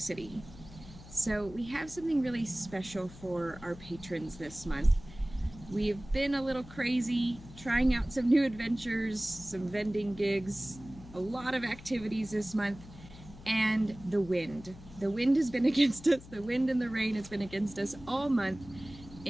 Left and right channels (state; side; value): noise; left; hum, 18 dB below the sound